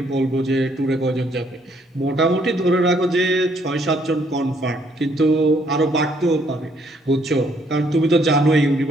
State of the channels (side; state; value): both; normal; correlation 0.68